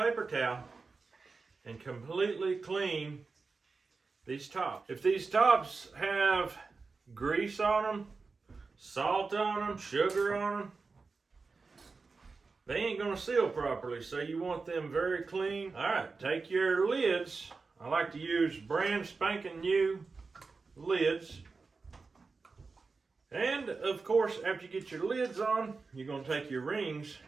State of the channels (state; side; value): quieter; left; 4.3 dB